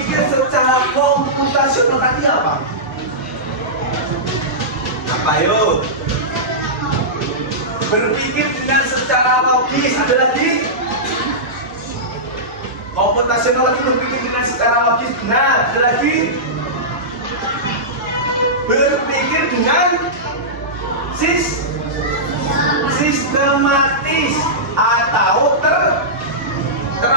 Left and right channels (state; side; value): normal; both; correlation -0.15